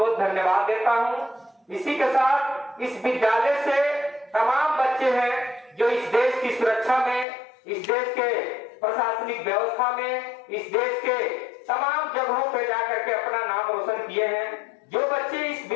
धन्यवाद देता हूं। इसी के साथ इस विद्यालय से तमाम बच्चे हैं जो इस देश की सुरक्षा में, इस देश के प्रशासनिक व्यवस्था में, इस देश के तमाम जगहों पे जाकर के अपना नाम रोशन किए हैं। जो बच्चे इस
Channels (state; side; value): drops out; right; at 7.2 s